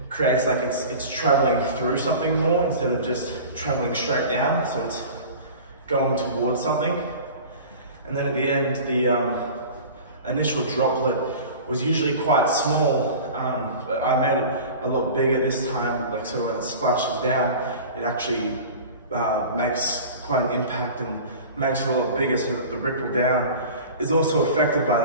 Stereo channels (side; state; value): both; inverted; correlation -0.38